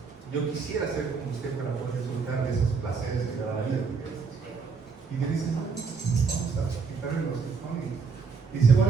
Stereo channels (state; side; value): quieter; left; 5.1 dB